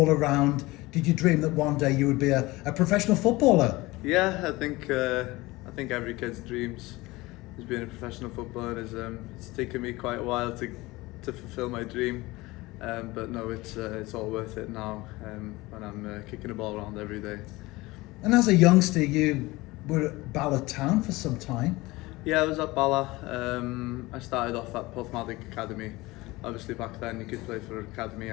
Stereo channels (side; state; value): right; quieter; 20.9 dB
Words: around, did you dream that one day you would be a professional footballer? Yeah, I think every kid's dreams is being a professional footballer. It's taken me quite a while to fulfil my dream, but no, it's all worth it now when I'm kicking a ball around every day. And as a youngster, you were at Bala Town for some time. Yeah, I was at Bala. I started off at Porthmadog Academy. Obviously back then you could play for academy